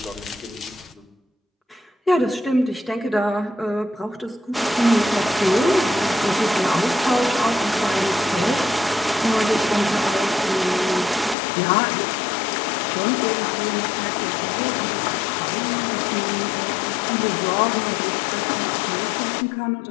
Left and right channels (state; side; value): drops out; right; at 11.4 s